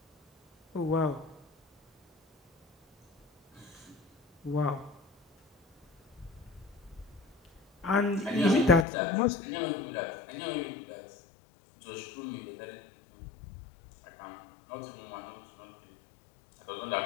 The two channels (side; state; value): right; drops out; at 8.8 s